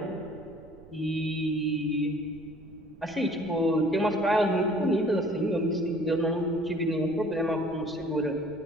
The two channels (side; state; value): right; noise; rumble, 23 dB below the sound